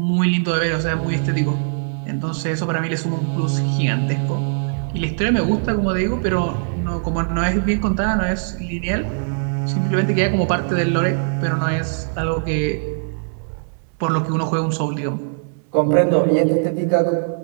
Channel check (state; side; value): silent; left; digital silence